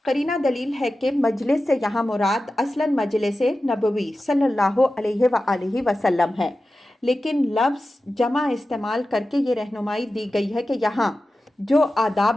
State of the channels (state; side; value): normal; both; correlation 0.93